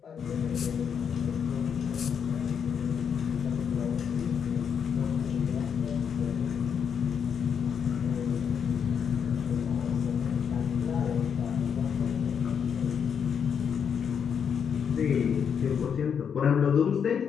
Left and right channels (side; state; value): right; quieter; 7.3 dB